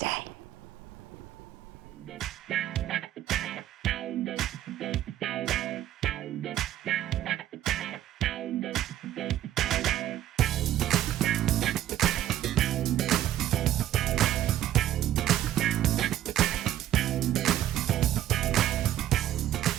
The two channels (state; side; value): quieter; left; 12.4 dB